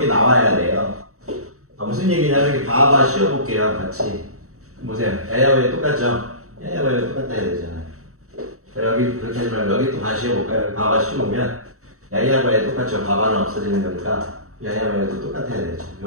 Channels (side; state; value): left; late; 0.64 ms